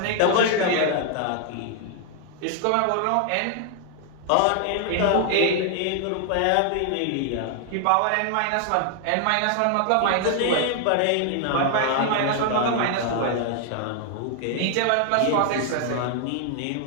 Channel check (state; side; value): different; both; correlation 0.00